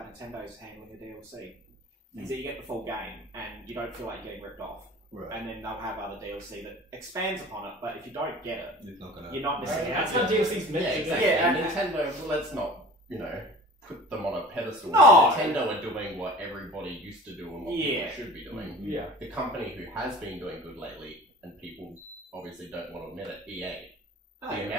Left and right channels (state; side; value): normal; both; correlation 0.42